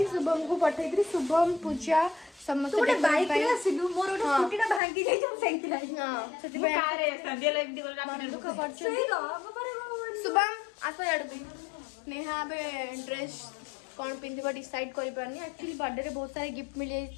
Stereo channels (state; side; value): drops out; right; at 4.8 s